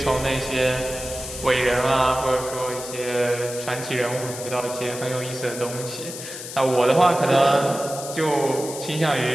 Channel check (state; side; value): noise; left; hiss, 10 dB below the sound